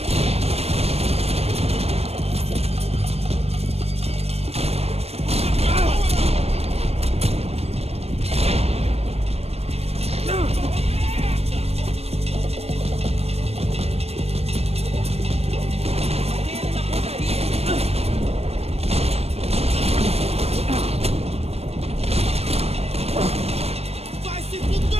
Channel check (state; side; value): late; left; 0.30 ms